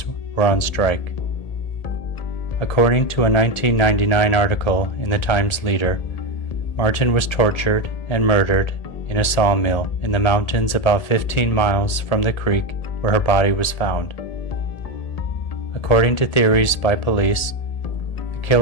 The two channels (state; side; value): late; right; 1.8 ms